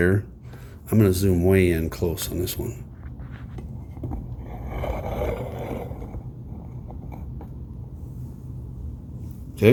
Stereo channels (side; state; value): both; identical; correlation 1.00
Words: I'm going to zoom way in close on this one.